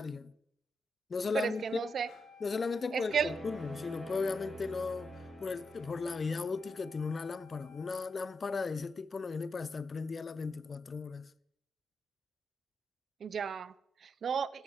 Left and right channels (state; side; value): normal; both; correlation 0.83